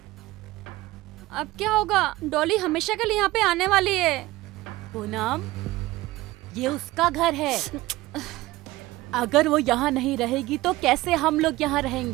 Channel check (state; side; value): quieter; left; 18.5 dB